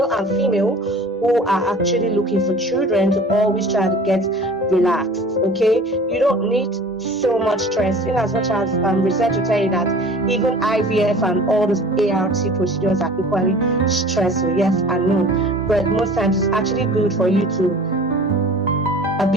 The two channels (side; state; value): both; normal; correlation 0.44